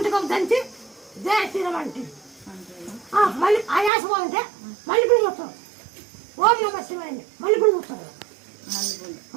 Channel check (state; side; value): drops out; left; at 3.9 s